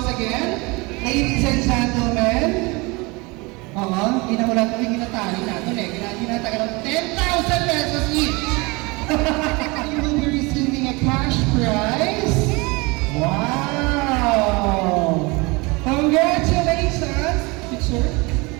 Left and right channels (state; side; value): quieter; left; 25.8 dB